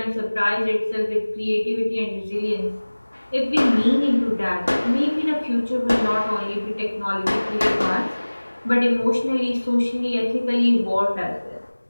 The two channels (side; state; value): both; inverted; correlation -1.00